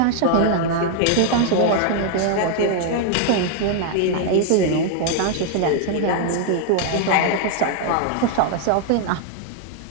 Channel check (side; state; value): both; different; correlation 0.00